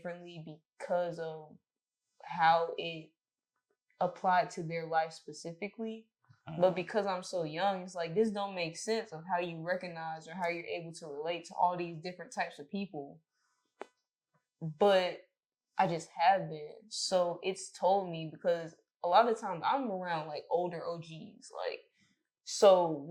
because of how it applied to their life specifically. But because I'm so young, it's like, this don't make sense of how you recognize or how you're able to relate to all these different types of people. But I just have been. So it's told me, because a lot of times I'm around like older OGs. Like, so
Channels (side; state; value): both; identical; correlation 1.00